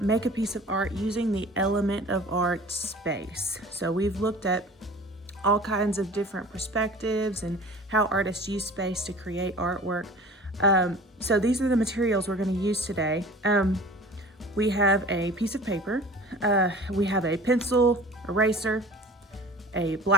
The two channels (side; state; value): both; normal; correlation 0.43